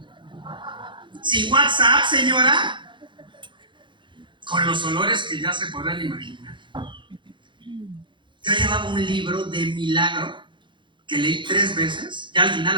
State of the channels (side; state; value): left; late; 0.23 ms